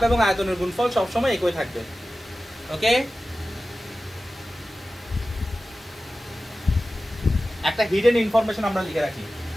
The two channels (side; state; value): both; normal; correlation 0.95